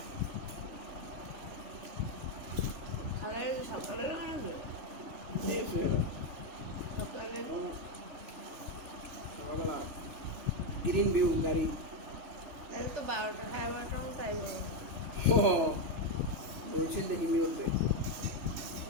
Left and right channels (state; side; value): late; left; 3.4 ms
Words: খালার সকালে বানাবে সকালে গ্রিন ভিউ গাড়ি তাহলে তো 12টা 12:30 মতো তাই বলো ও বলছে দেখি মিউটে